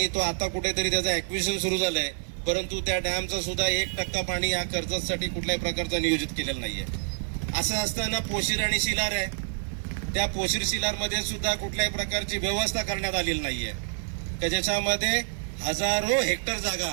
तो आता कुठेतरी त्याचं ॲक्विजिशन सुरू झालंय परंतु त्या डॅमचं सुद्धा 1% पाणी या कर्जतसाठी कुठल्याही प्रकारचं नियोजित केलेलं नाहीये। असं असताना पोशीर आणि शिलार आहे त्या पोशीर शिलारमध्ये सुद्धा कुठल्याही प्रकारची व्यवस्था करण्यात आलेली नाहीये की ज्याच्यामध्ये हजारो हेक्टर जागा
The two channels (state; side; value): silent; left; 60 dB below the other